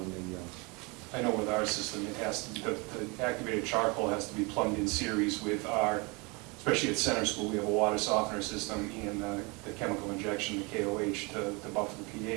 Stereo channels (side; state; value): left; quieter; 28.6 dB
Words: the, I know with our system, it has to, the activated charcoal has to be plumbed in series with our, especially at Center School, we have a water softener system and the chemical injection, the KOH, to buffer the